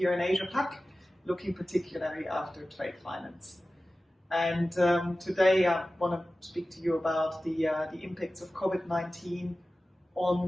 in Asia Pac, looking particularly after trade finance. And today I want to speak to you about the impacts of COVID-19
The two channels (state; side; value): normal; both; correlation 0.96